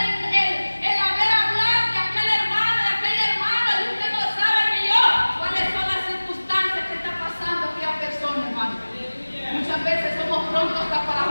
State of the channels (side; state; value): both; inverted; correlation -1.00